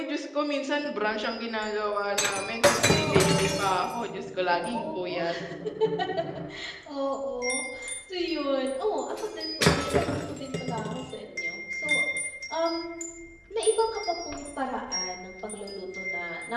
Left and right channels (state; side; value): identical; both; correlation 1.00